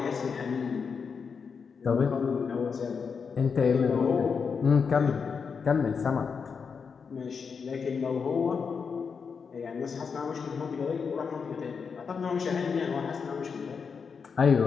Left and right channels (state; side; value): quieter; right; 5.8 dB